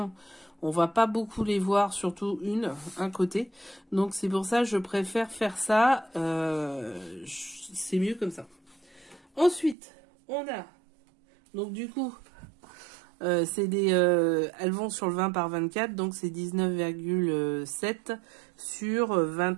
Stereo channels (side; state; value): left; drops out; at 9.8 s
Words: on va pas beaucoup les voir, surtout un côté. Donc c'est pour ça que je préfère faire ça, c'est mieux comme ça. Ensuite, on a, donc du coup, elles vont sur le 20 par 24, donc c'est 19,7 sur